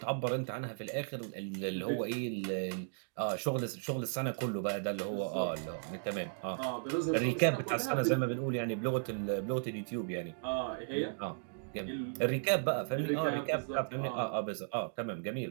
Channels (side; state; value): left; silent; digital silence